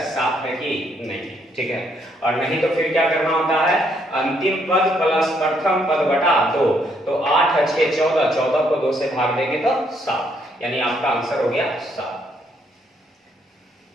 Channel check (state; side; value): normal; both; correlation 0.71